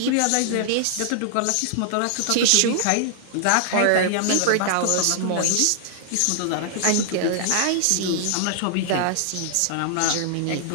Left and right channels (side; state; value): both; different; correlation -0.01